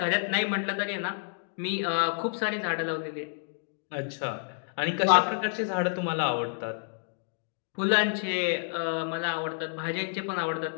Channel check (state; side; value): silent; right; 58 dB below the other